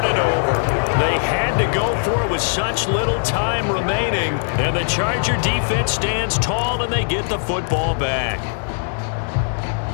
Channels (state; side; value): silent; right; digital silence